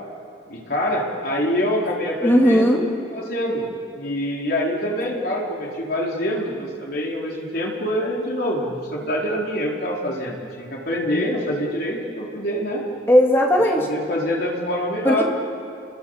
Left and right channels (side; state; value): both; normal; correlation 0.55